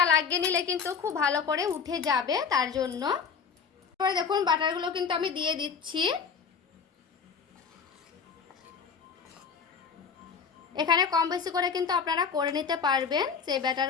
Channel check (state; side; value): quieter; right; 6.1 dB